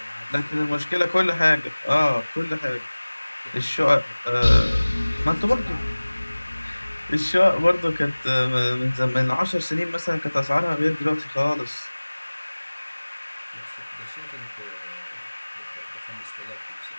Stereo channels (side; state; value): both; inverted; correlation -1.00